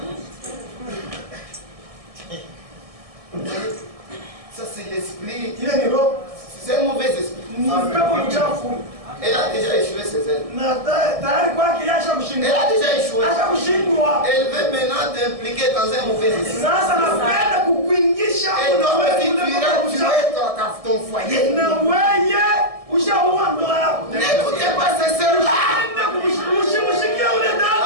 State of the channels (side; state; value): left; late; 1.7 ms